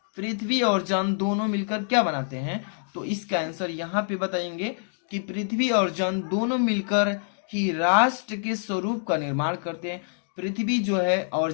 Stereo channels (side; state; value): right; silent; digital silence